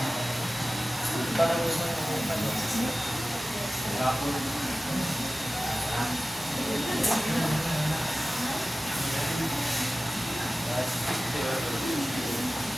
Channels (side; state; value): both; normal; correlation 0.96